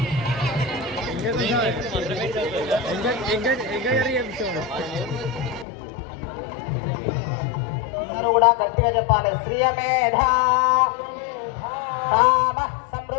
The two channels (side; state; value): right; drops out; at 5.7 s